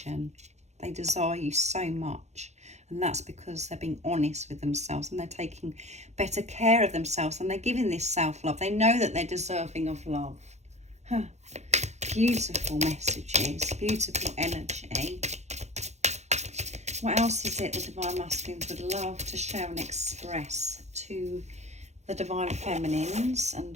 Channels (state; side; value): late; left; 0.33 ms